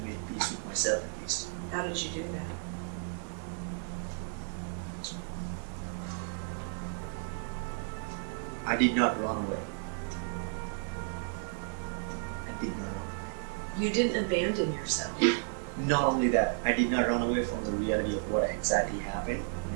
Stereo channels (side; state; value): left; silent; 56 dB below the other